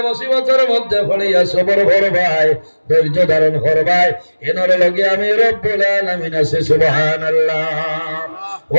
মুসিবতের মধ্যে হলিয়া সবর করবাই, ধৈর্য ধারণ করবাই, এনর লগে আমি রব্বুল আলামিন আছি। সুবহানাল্লাহ।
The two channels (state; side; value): inverted; both; correlation -1.00